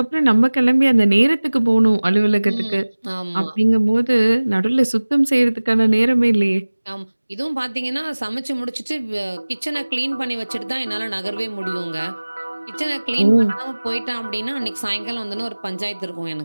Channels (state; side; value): inverted; both; correlation -1.00